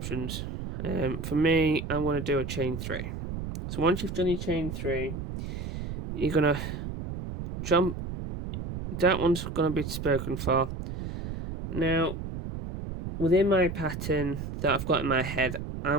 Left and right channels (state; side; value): noise; right; rumble, 6 dB below the sound